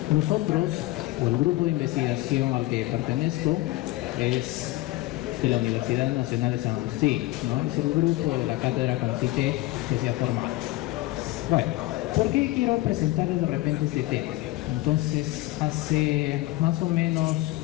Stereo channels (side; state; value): right; quieter; 18.1 dB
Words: nosotros, o el grupo de investigación al que pertenezco, es de la Universidad Nacional de San Agustín, ¿no? Es el grupo de la cátedra CONCITEC que se ha formado. Bueno, ¿por qué quiero presentarles de repente este tema? Entonces, hace más o menos